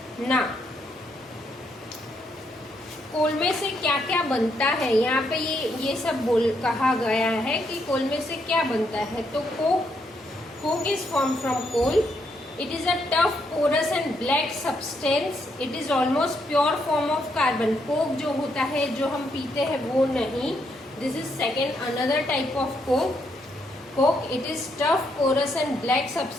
Now, कोल में से क्या क्या बनता है, यहाँ पे ये सब कहा गया है कि कोल में से क्या बनता है। तो coke is form from coal. It is a tough porous and black substance. It is almost pure form of carbon. Coke जो होता है जो हम पीते हैं वो नहीं, this is second another type of coke. It is tough porous and black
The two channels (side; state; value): both; normal; correlation 0.76